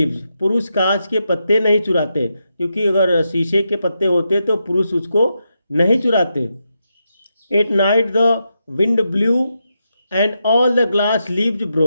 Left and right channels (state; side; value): inverted; both; correlation -0.85